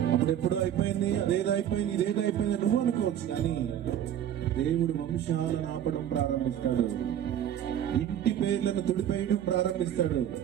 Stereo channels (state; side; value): quieter; left; 10.3 dB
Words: అప్పుడెప్పుడో అయిపోయింది, అదేదో అయిపోయింది, ఇదేదో అయిపోయింది నువ్వు అనుకోవచ్చు, కానీ దేవుడు వంశాలను ఆపడం ప్రారంభిస్తాడు. ఇంటి పేర్లను తుడిపేయడం ప్రారంభిస్తాడు.